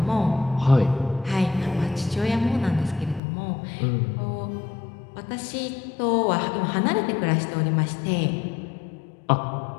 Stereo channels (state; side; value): drops out; right; at 3.2 s